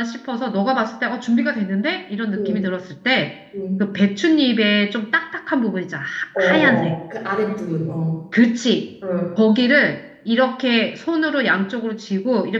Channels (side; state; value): both; identical; correlation 1.00